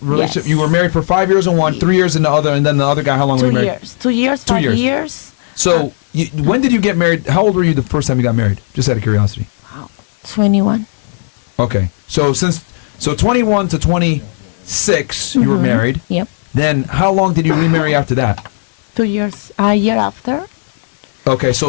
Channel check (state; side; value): silent; right; digital silence